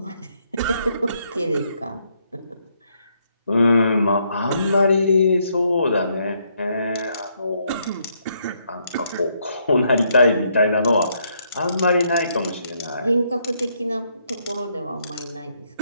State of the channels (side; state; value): both; inverted; correlation -0.74